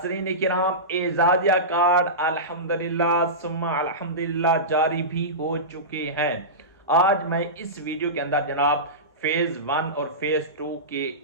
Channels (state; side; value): normal; both; correlation -0.19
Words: किराम, एजाजिया कार्ड अल्हम्दुलिल्लाह सुम्मा अल्हम्दुलिल्लाह जारी भी हो चुके हैं। आज मैं इस वीडियो के अंदर जनाब फेज 1 और फेज 2 के